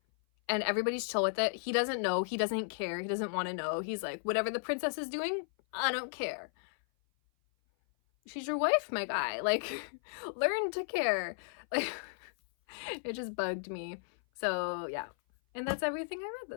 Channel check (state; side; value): silent; right; 55 dB below the other